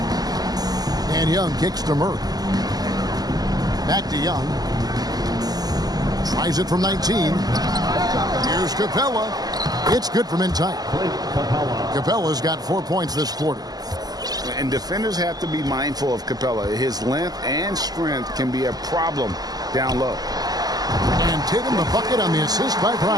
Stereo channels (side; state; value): left; late; 0.19 ms